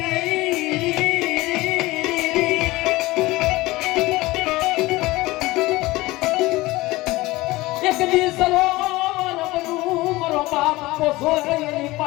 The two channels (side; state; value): right; quieter; 19.9 dB